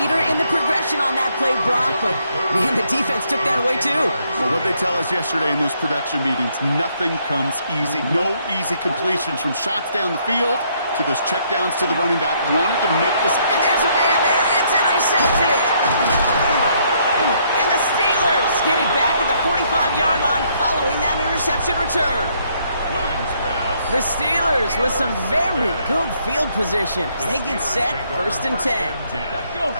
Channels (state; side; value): inverted; both; correlation -0.70